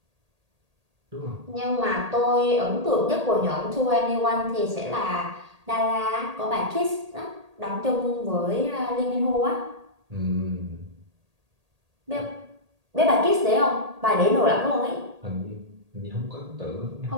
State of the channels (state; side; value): late; left; 1.8 ms